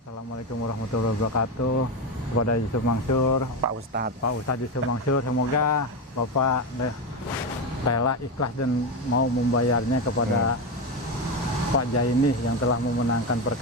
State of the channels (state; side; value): normal; both; correlation 0.13